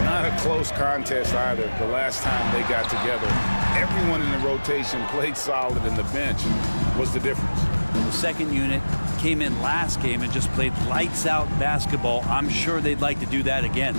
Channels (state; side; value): inverted; both; correlation -1.00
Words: a close contest either. The last time they got together, everyone in the rotation played solid, and the bench was the difference. The second unit came in last game and just played lights-out basketball. I'm sure they'd like to do that again.